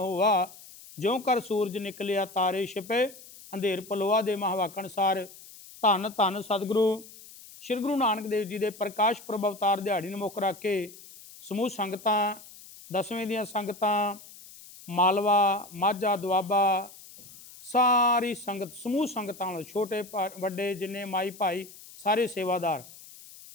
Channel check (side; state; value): left; noise; hiss, 19 dB below the sound